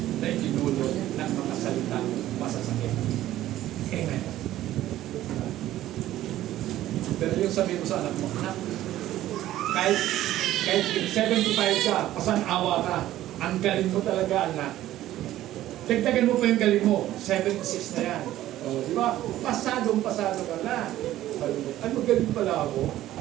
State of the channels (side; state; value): left; quieter; 14.0 dB